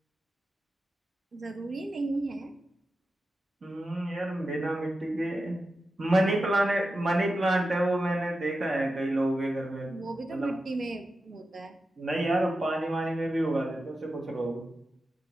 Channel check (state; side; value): normal; both; correlation 0.91